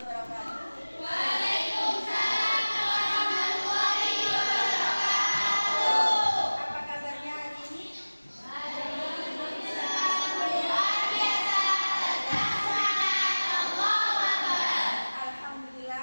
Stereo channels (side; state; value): both; inverted; correlation -1.00